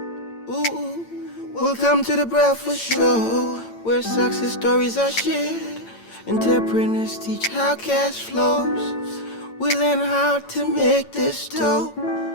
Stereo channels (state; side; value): late; right; 8.8 ms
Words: Ooh. Welcome to the Breakfast Show, where success stories are shared. Entrepreneurs teach how cash flows. We learn how to make this dough.